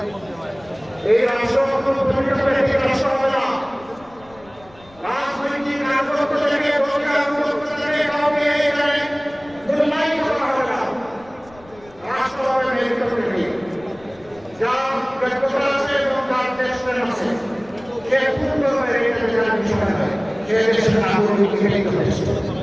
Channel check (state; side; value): noise; left; rumble, 26 dB below the sound